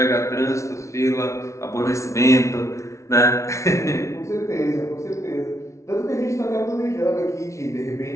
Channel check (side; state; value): right; late; 0.14 ms